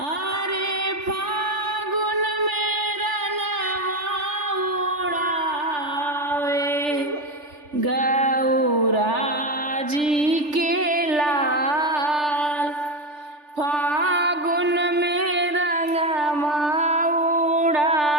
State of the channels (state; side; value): late; left; 3.4 ms